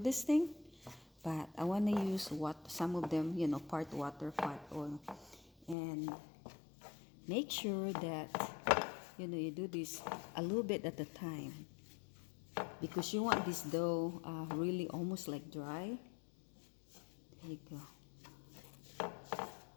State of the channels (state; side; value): drops out; right; at 5.8 s